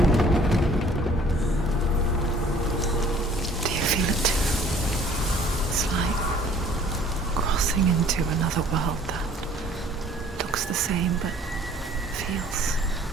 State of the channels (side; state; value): both; normal; correlation 0.54